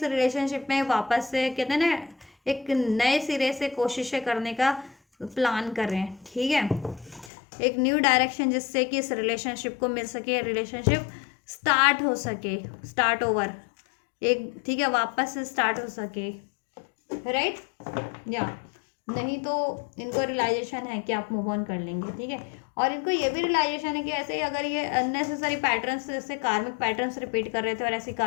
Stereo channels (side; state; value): right; drops out; at 7.3 s